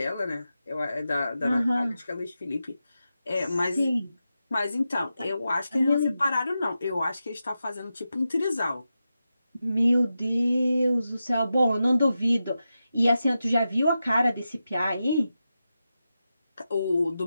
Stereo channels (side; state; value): both; inverted; correlation -0.90